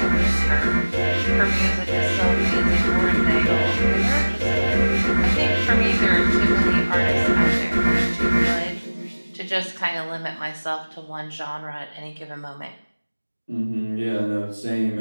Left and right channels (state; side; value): inverted; both; correlation -1.00